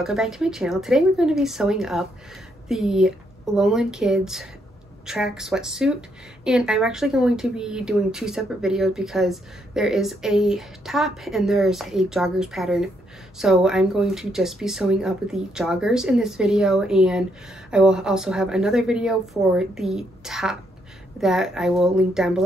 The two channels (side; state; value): both; normal; correlation 0.75